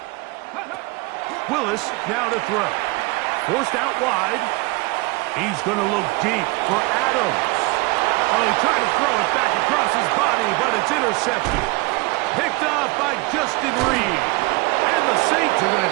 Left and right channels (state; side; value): quieter; left; 24.6 dB